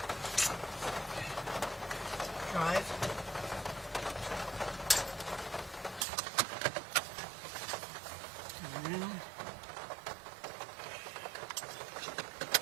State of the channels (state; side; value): drops out; left; at 6.1 s